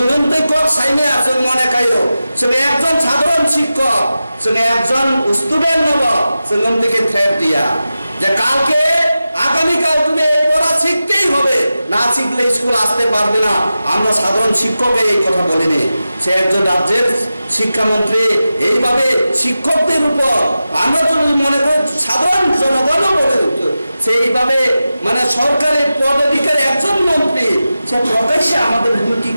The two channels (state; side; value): inverted; both; correlation -0.93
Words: कक साइमे जों मने खायो जों एकजन साधारण शिक्षक जों एकजन स्टुडेंट नब जों नोंदिके थ्रेट दिया যে কালকে আগামী কাল তুমি এই পড়া শিখতেই হবে না শিখলে স্কুল আসতে পারবে না আমরা সাধারণ শিক্ষককে এই কথা বলিনি সে একজন রাজ্যের শিক্ষামন্ত্রী এইভাবে শিক্ষকদের উপর আমরা যদি মনে করি সাধারণ জনগণও বলে সেইভাবে মানে সরকারি পদাধিকারী একজন মন্ত্রী সে প্রকাশ্যে আমাদের হুমকি